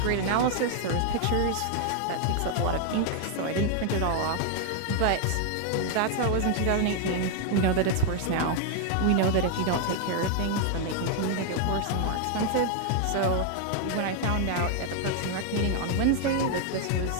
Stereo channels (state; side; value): different; both; correlation 0.00